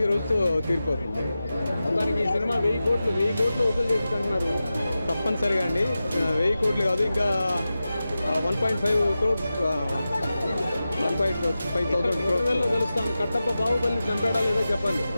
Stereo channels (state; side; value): inverted; both; correlation -0.93